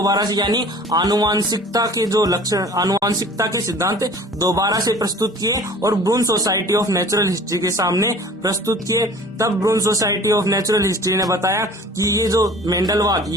से यानी आनुवांशिकता के जो लक्षण, आनुवांशिकता के सिद्धांत दोबारा से प्रस्तुत किए और ब्रून सोसाइटी ऑफ नेचुरल हिस्ट्री के सामने प्रस्तुत किए। तब ब्रून सोसाइटी ऑफ नेचुरल हिस्ट्री ने बताया कि ये जो मेंडलवाद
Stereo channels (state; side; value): normal; both; correlation 0.46